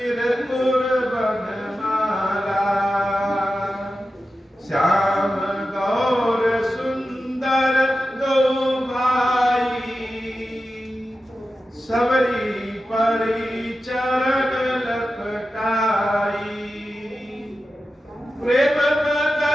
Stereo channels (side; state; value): both; normal; correlation 0.92